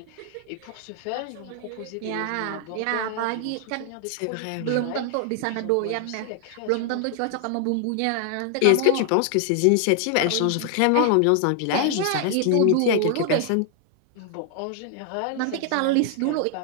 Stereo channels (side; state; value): both; different; correlation 0.00